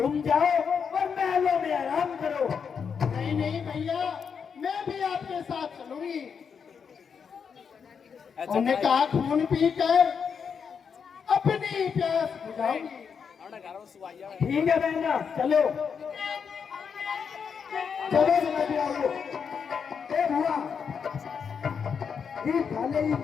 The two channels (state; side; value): quieter; right; 6.5 dB